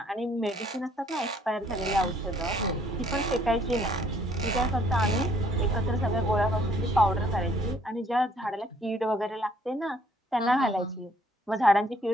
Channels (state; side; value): normal; both; correlation 0.63